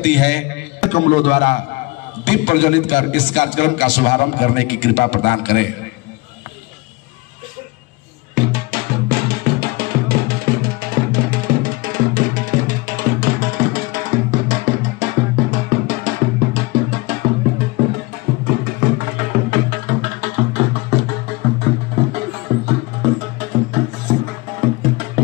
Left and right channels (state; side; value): quieter; right; 24.0 dB